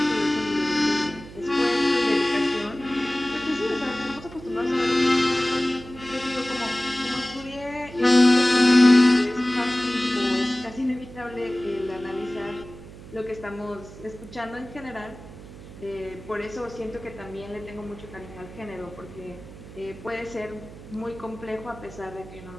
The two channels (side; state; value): right; noise; hum, 16 dB below the sound